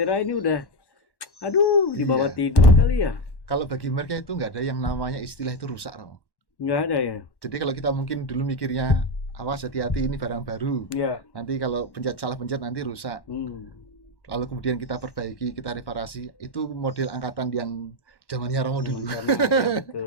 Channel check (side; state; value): right; late; 1.1 ms